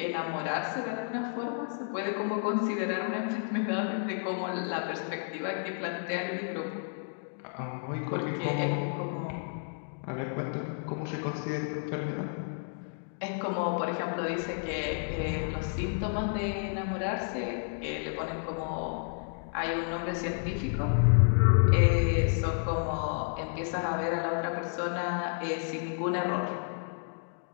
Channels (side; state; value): right; silent; digital silence